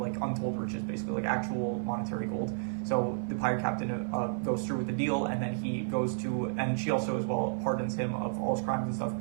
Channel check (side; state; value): left; silent; 57 dB below the other